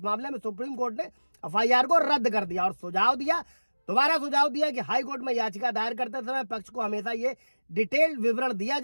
मामले में सुप्रीम कोर्ट ने FIR को रद्द कर दिया और दोबारा सुझाव दिया कि हाई कोर्ट में याचिका दायर करते समय पक्ष को हमेशा ये डिटेल्ड विवरण दिया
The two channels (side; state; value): both; inverted; correlation -1.00